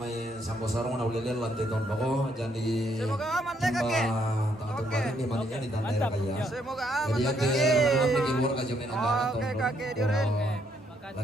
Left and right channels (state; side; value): normal; both; correlation 0.72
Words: sampo sarung na ulilil lantai tahun bako jadi Semoga aman deh kakek. Oke. Ini maninya di tanda kaya. Semoga aman Jadi deh kakek kakek. pergi luar ke jomai nonton. Oke kakek diurin.